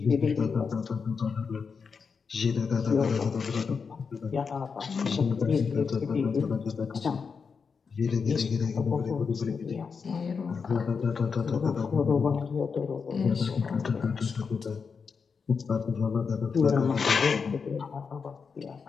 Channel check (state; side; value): quieter; right; 5.6 dB